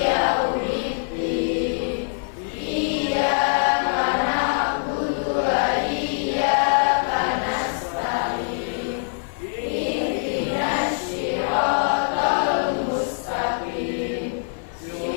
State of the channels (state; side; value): silent; right; 56 dB below the other